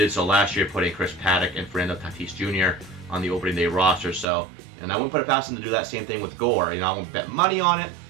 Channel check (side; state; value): left; drops out; at 4.2 s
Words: so last year, putting Chris Paddack and Fernando Tatis Jr. on the opening day roster. So, and I wouldn't put it past him to do that same thing with Gore. I won't bet money on it,